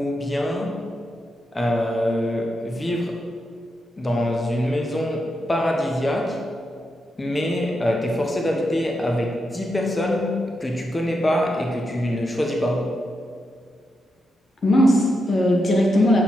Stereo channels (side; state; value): both; normal; correlation 0.85